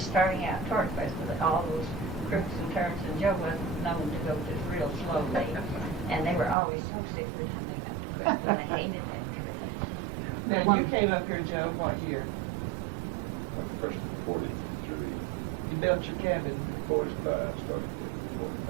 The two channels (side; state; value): left; drops out; at 6.6 s